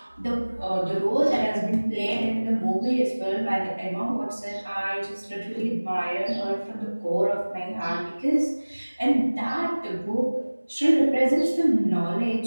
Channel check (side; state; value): both; inverted; correlation -1.00